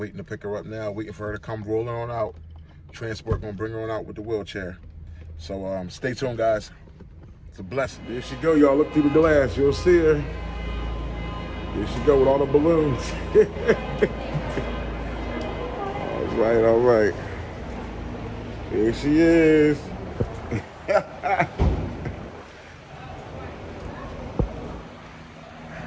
to pick her up now. Waiting for her to come rolling on out. Transport gonna bring her on out with the wheelchair. So stay tuned, guys. It's a blessing. There she go, y'all. Look through the glass. You'll see her. There she go with all the balloons. All right, all right. Here she is.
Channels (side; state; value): both; identical; correlation 1.00